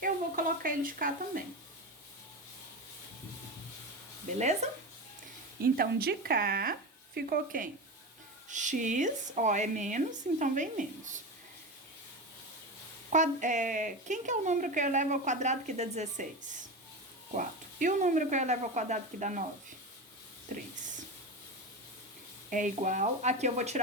eu vou colocar ele de cá também. Beleza? Então, de cá, ficou quem? X, ó, é menos, então vem menos. Quem que é o número que eu elevo ao quadrado que dá 16? 4. E o número que eu elevo ao quadrado que dá 9? 3. É igual, aqui eu vou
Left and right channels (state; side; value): normal; both; correlation 0.22